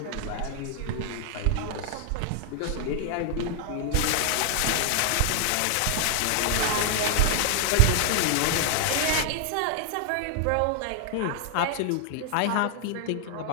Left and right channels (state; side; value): different; both; correlation 0.00